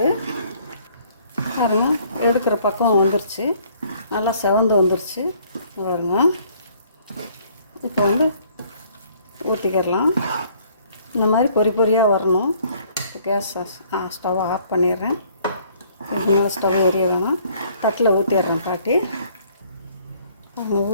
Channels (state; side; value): inverted; both; correlation -0.61